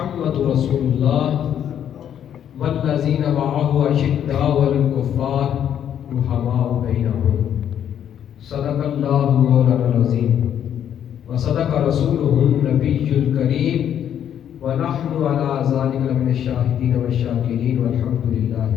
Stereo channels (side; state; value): right; quieter; 9.6 dB